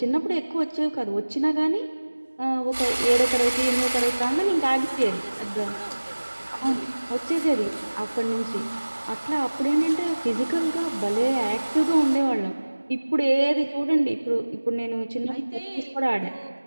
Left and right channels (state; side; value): inverted; both; correlation -1.00